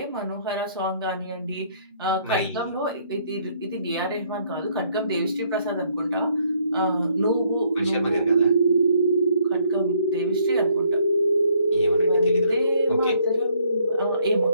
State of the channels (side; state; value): both; inverted; correlation -0.66